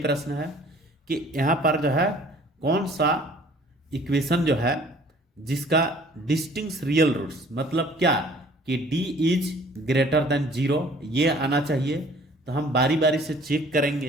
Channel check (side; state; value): both; normal; correlation 0.53